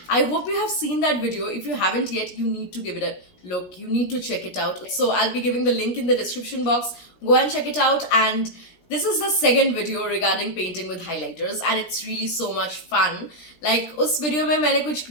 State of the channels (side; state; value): right; late; 17 ms